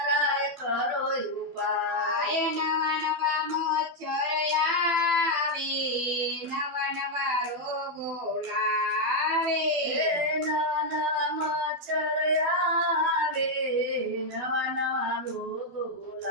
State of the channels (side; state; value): left; late; 12 ms